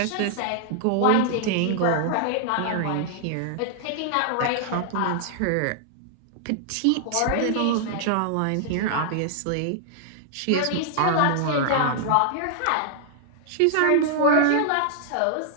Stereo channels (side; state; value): both; different; correlation -0.01